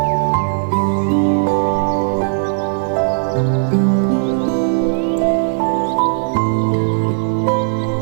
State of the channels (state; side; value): silent; left; 68 dB below the other